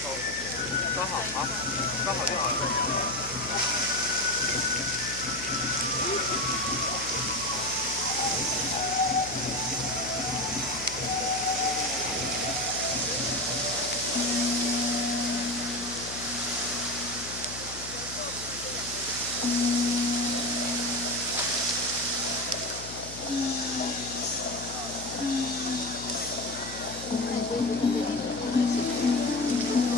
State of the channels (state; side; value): noise; left; hum, 13 dB below the sound